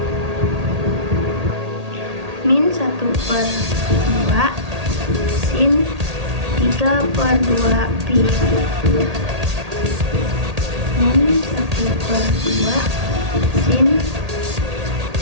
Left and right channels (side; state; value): left; late; 1.8 ms